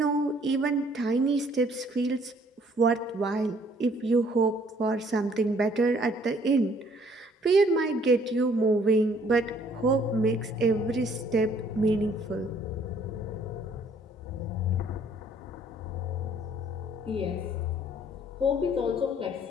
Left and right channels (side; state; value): both; normal; correlation 0.61